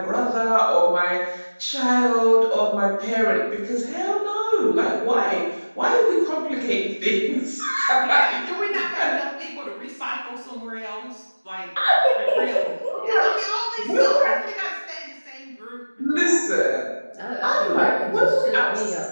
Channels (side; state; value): both; inverted; correlation -1.00